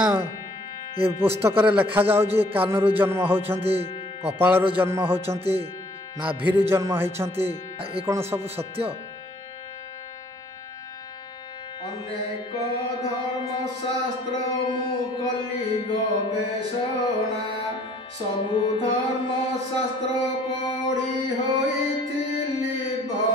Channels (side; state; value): both; normal; correlation 0.59